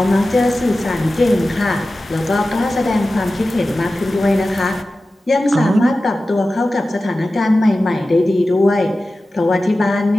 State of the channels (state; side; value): normal; both; correlation 0.95